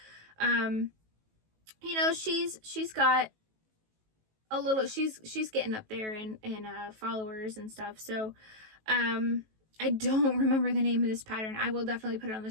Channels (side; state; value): left; late; 18 ms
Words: she's got a little, she's getting up there in followers and stuff. So, I don't remember the name of this pattern. I will definitely put it on the